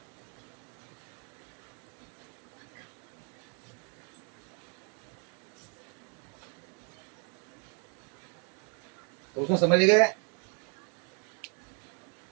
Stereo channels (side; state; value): left; quieter; 38.6 dB